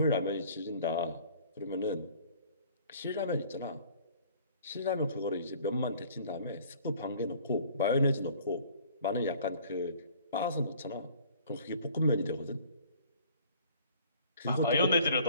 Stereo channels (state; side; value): inverted; both; correlation -0.53